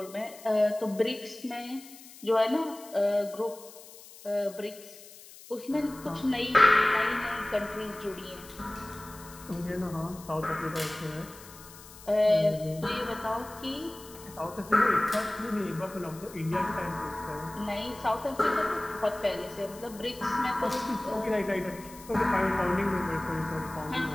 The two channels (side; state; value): left; noise; hiss, 19 dB below the sound